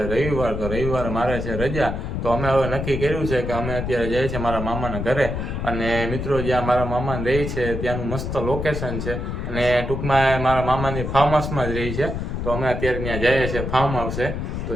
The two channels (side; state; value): left; noise; rumble, 4 dB below the sound